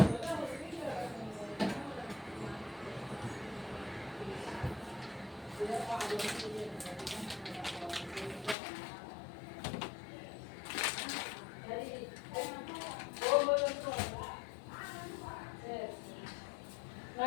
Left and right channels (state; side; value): drops out; right; at 8.6 s